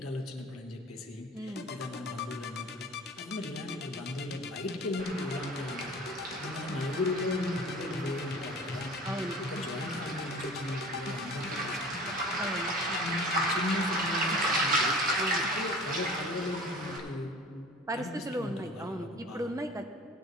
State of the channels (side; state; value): both; normal; correlation 0.42